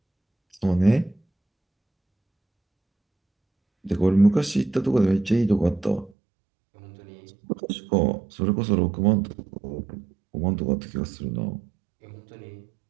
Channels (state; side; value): drops out; left; at 6.1 s